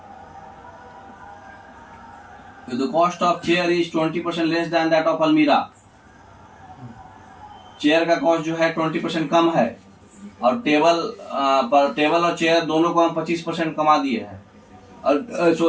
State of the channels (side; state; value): both; identical; correlation 1.00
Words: the cost of chair is 20% less than that of अलमीरा, चेयर का कॉस्ट जो है 20% कम है, और टेबल और चेयर दोनों को हम 25% कमा दिए हैं, और